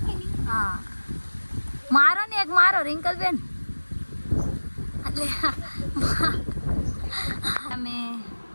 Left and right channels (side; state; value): both; inverted; correlation -1.00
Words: હા મારો ને એક મારો રિંકલ બેન. એટલે તમે